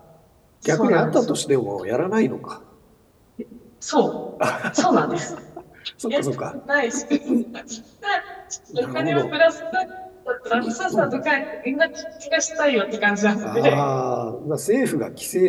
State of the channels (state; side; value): identical; both; correlation 1.00